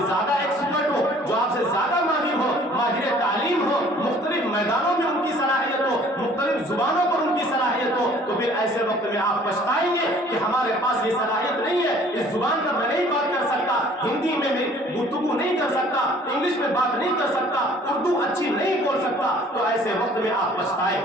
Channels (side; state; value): both; normal; correlation 0.54